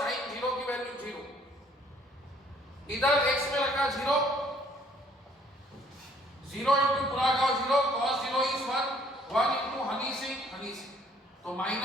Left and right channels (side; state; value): both; normal; correlation 0.61